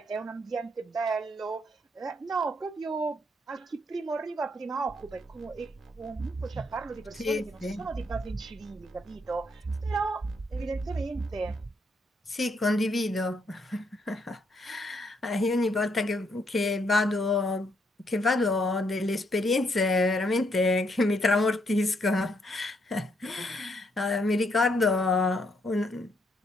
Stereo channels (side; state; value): both; normal; correlation 0.74